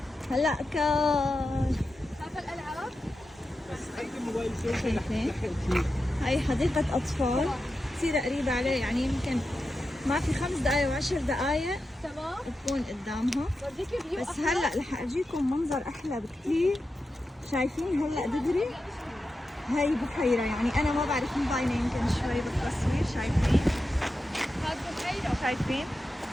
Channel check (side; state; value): both; normal; correlation 0.90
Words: هلا شايفة الألعاب؟ شايفين؟ هاي حديقة أطفال كثير قريبة عليه، يعني يمكن ما في 5 دقايق و10 دقايق تكون قدامها. بس هلا رح أجيكم منظر أحلى بكثير. شايفين هلا دغري هاي بحيرة، يعني أنا ما بعرف مبينة يمكن شوي بالتصوير. شايفين؟ شايفين؟